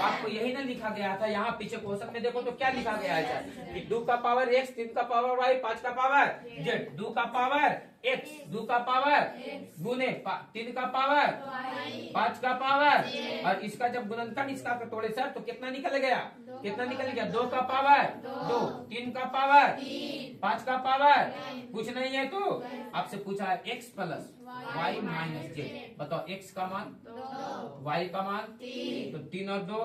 यही ना लिखा गया था, यहाँ पीछे क्वेश्चन में देखो तो क्या लिखा गया है कि 2 का पावर x, 3 का पावर y, 5 का पावर z, 2 का पावर x, 2 का पावर गुने 3 का पावर 5 का पावर, और इसका जब गुणनखंड इसका तोड़े सर तो कितना निकल गया? कितना निकल गया? 2 का पावर 2, 3 का पावर 5 का पावर। कुछ नहीं है तो आपसे पूछा है x plus y minus z। बताओ x का मान, y का मान, तो 3 और 2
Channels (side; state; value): both; identical; correlation 1.00